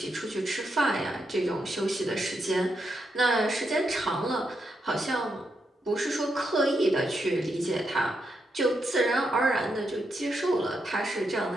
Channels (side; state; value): both; normal; correlation 0.82